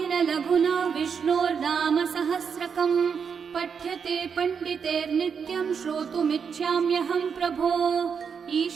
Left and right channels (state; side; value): quieter; left; 6.5 dB